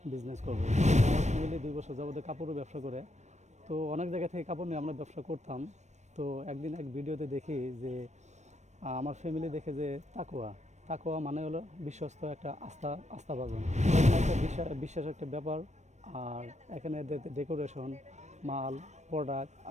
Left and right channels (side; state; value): left; late; 0.34 ms